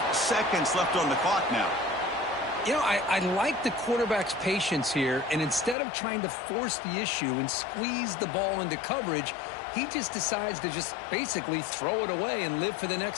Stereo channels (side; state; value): right; drops out; at 5.8 s